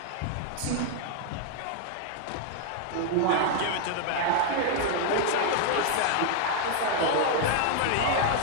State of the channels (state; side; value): different; both; correlation 0.00